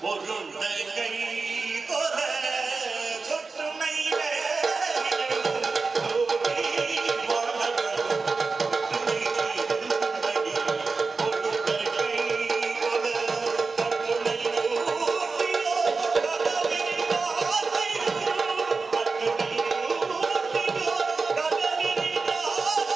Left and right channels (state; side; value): quieter; left; 4.3 dB